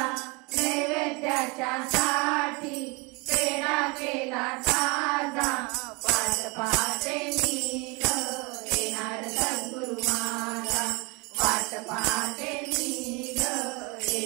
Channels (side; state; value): left; quieter; 28.3 dB